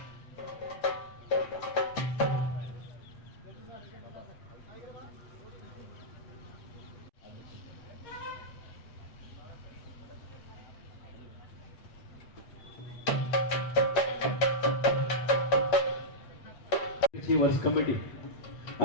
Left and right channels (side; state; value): right; late; 8.6 ms